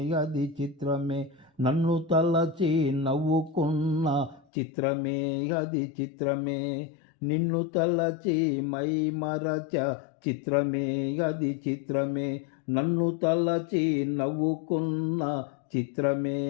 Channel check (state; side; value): drops out; right; at 4.5 s